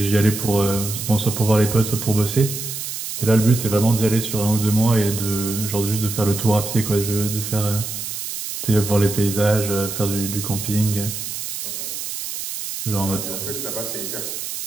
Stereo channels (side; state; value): right; noise; hiss, 6 dB below the sound